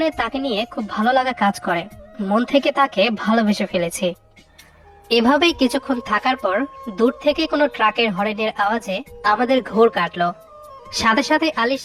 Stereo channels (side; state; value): both; identical; correlation 1.00